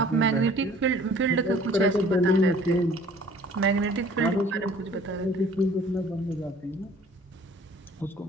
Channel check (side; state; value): both; normal; correlation 0.52